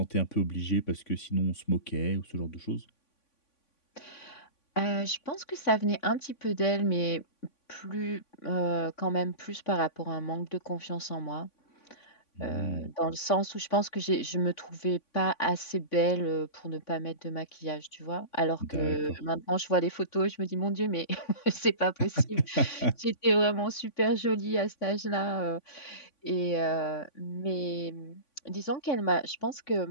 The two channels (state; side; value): late; right; 3.5 ms